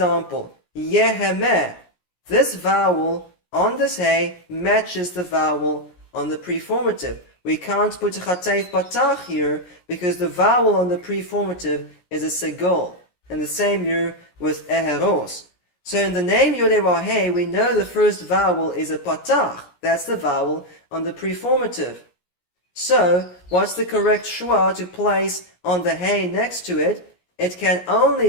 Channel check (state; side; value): late; right; 17 ms